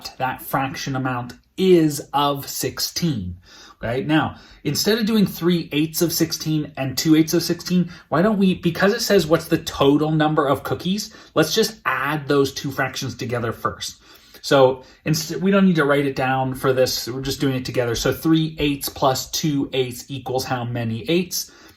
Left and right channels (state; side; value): identical; both; correlation 1.00